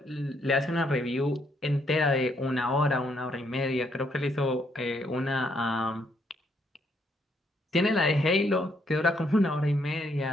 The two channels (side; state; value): both; normal; correlation 0.72